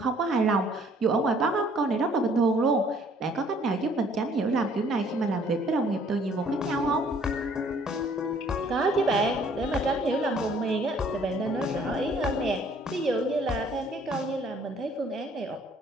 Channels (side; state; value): both; normal; correlation 0.59